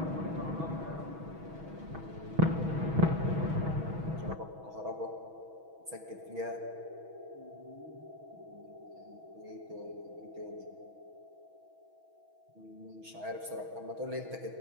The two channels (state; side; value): late; left; 6.2 ms